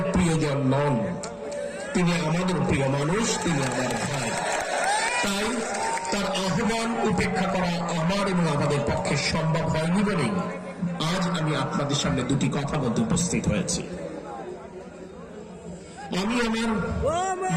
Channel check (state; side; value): identical; both; correlation 1.00